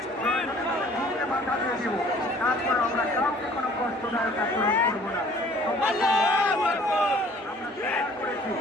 প্রয়োজনে তাদের বুকে মাথা দিয়ে দিব। তারপরে আমরা কাউকে কোনো কষ্টদায়ক আচরণ করবো না। আমরা শেয়ার করেছি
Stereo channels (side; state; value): both; normal; correlation 0.54